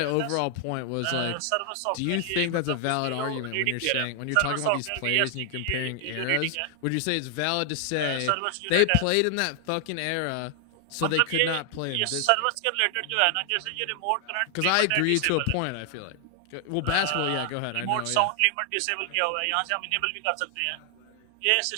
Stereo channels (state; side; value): different; both; correlation 0.00